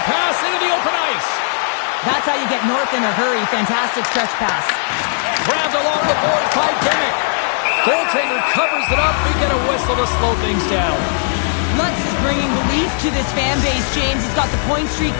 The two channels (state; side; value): silent; right; digital silence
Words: pass into the open ice. That's how you get north in a hurry. Fantastic stretch pass. Grabbed along the board by Dimmick. Goaltender covers it up. We get a whistle to slow things down. Lutz is bringing belief to this fan base, James. He's got the point streak